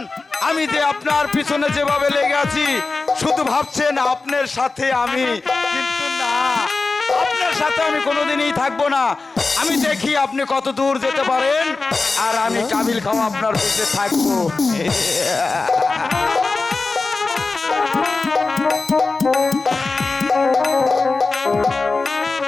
আমি যে আপনার পিছনে যেভাবে লেগে আছি, শুধু ভাবছেন আপনার সাথে আমি, কিন্তু না, আপনার সাথে আমি কোনোদিনই থাকবো না। আমি দেখি আপনি কত দূর যেতে পারেন, আর আমি কাবিল খাওয়া আপনার পিছে থাকবো।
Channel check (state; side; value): quieter; right; 3.8 dB